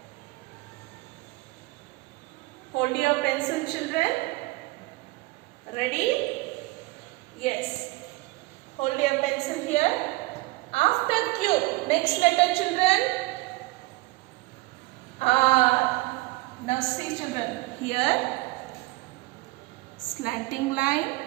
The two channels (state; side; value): quieter; left; 21.9 dB